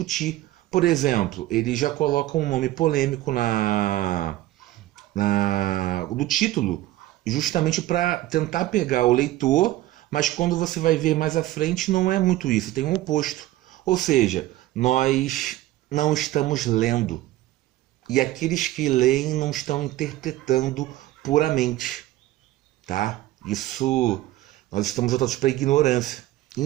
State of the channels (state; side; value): quieter; left; 15.9 dB